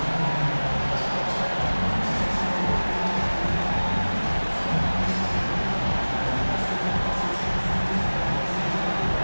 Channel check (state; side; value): inverted; both; correlation -1.00